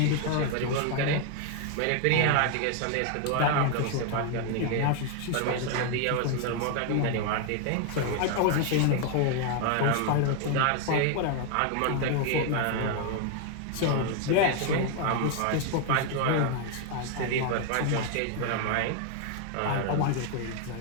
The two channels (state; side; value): different; both; correlation 0.00